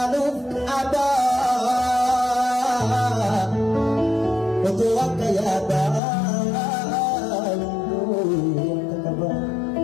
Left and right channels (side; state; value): right; drops out; at 6.0 s